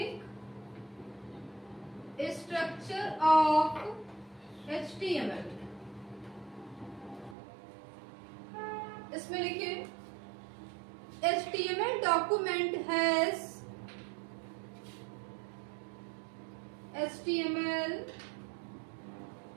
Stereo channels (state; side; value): drops out; left; at 7.4 s